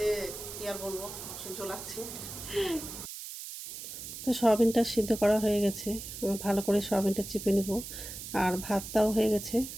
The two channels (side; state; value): right; noise; hiss, 10 dB below the sound